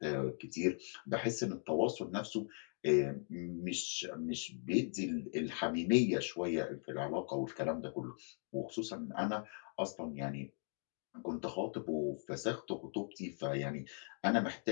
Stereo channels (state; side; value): silent; right; 52 dB below the other